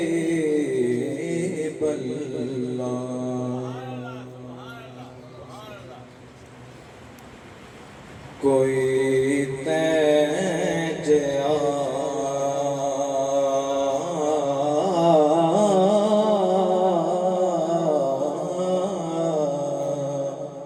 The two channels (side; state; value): both; identical; correlation 1.00